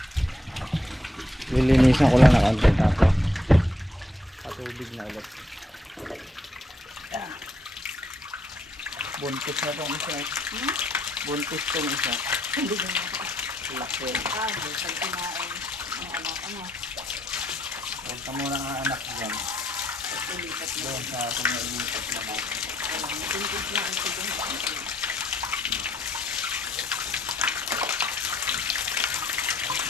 Lilinisan ko lang na konti tapos patubig na ulit. Yan. Buntis na tong isa. Buntis tong isa. Hindi na nga. Laki. Ah, hindi. Pag kumain. Ang ano. Huwag ka muna ang anak dyan. Ulipat na. Doon sa ating nailisip naman. Tintig na ang sigong.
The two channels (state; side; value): normal; both; correlation 0.72